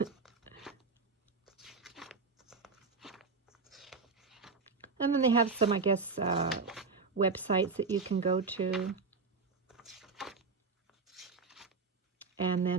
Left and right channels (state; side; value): quieter; left; 4.6 dB